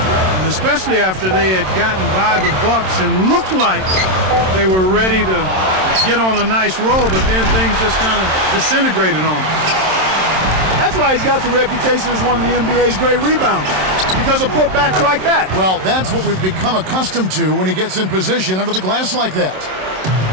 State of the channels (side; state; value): left; late; 27 ms